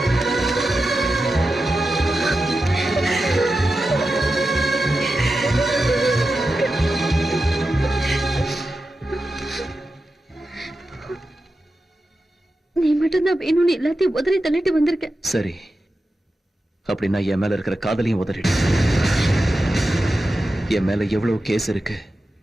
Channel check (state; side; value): normal; both; correlation 0.91